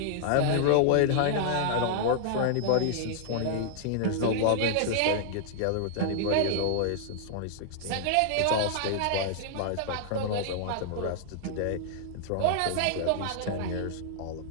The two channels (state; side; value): different; both; correlation -0.01